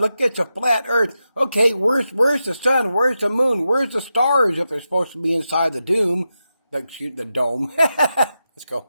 look, it's a flat earth. Okay, where's the sun? Where's the moon? Where's the stars if they're supposed to be inside the dome? Let's go.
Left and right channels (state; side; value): inverted; both; correlation -0.89